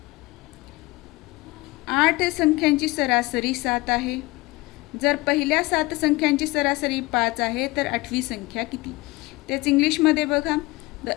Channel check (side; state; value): right; quieter; 21.8 dB